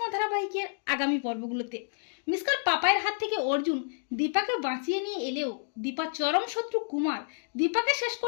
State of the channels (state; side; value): silent; right; digital silence